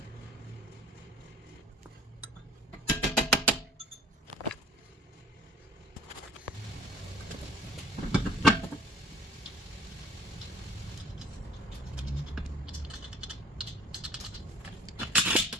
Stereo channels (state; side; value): normal; both; correlation 0.51